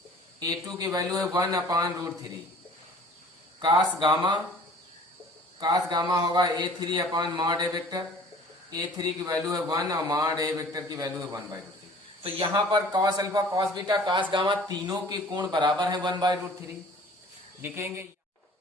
A2 की वैल्यू है 1 अपॉन √3। कास गामा होगा A3 अपॉन मॉड ए वेक्टर, A3 की वैल्यू है 1 और मॉड ए वेक्टर की वैल्यू है 1/√3। तो यहां पर cos alpha, cos beta, cos gamma तीनों के कोण बराबर है 1/√3। लिखेंगे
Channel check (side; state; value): both; normal; correlation 0.48